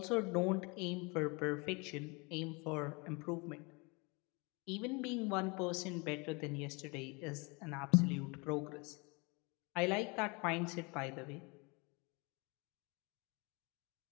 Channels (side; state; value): right; quieter; 29.0 dB